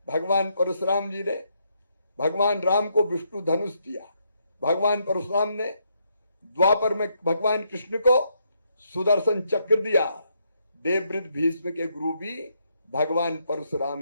भगवान परशुराम जी ने भगवान राम को विष्णु धनुष दिया। भगवान परशुराम ने द्वापर में भगवान कृष्ण को सुदर्शन चक्र दिया। देवव्रत भीष्म के गुरु भी भगवान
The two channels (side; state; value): both; inverted; correlation -0.76